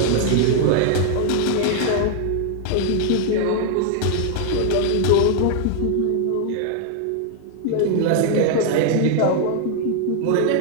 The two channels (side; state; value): both; different; correlation 0.00